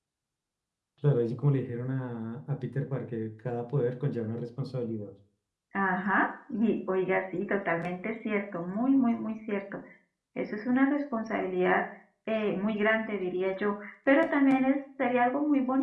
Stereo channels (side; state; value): both; identical; correlation 1.00